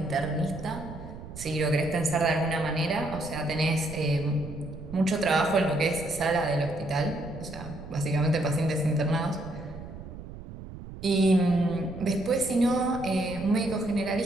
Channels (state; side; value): noise; right; rumble, 13 dB below the sound